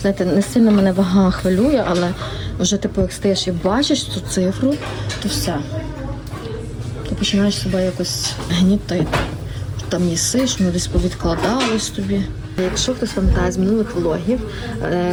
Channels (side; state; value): both; identical; correlation 1.00